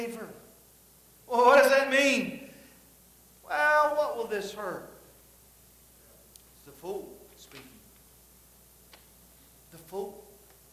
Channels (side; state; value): both; identical; correlation 1.00